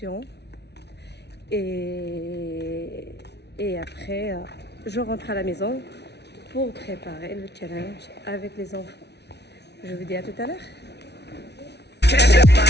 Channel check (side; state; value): right; late; 0.49 ms